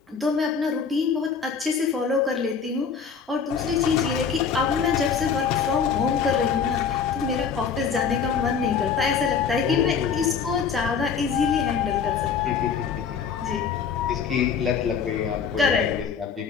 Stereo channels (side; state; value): right; quieter; 6.4 dB